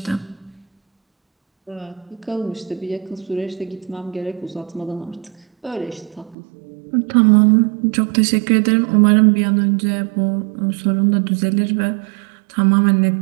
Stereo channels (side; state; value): left; drops out; at 6.4 s